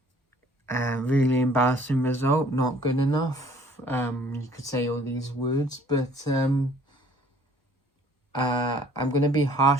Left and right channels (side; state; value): both; normal; correlation 0.56